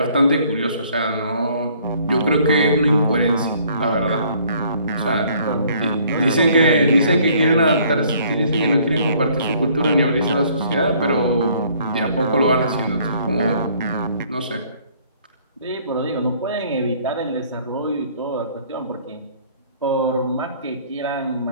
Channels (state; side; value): inverted; both; correlation -0.60